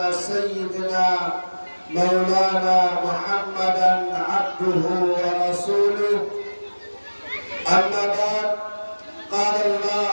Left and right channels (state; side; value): inverted; both; correlation -1.00